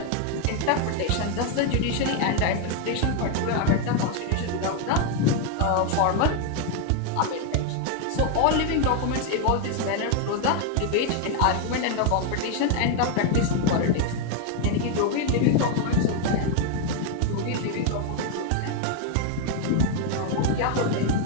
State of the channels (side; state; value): both; different; correlation 0.01